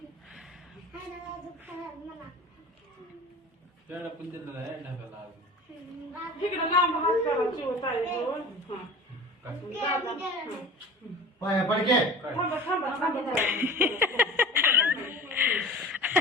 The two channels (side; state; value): both; normal; correlation 0.38